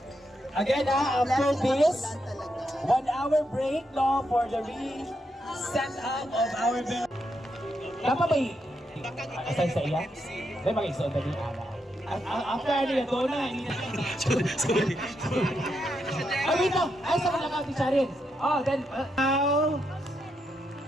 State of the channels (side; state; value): both; normal; correlation 0.82